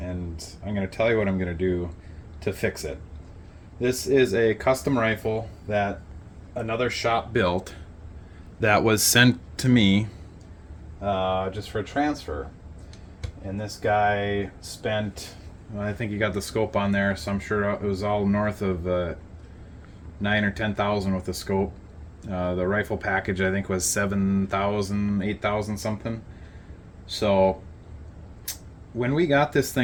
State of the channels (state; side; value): identical; both; correlation 1.00